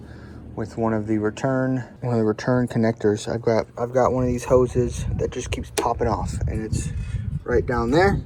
with one of the return connectors. I've got one of these hoses that just keeps popping off, and it's right down there.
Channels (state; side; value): identical; both; correlation 1.00